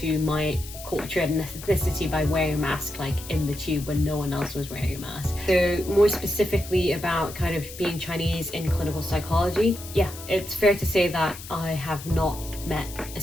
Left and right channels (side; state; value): left; noise; hiss, 14 dB below the sound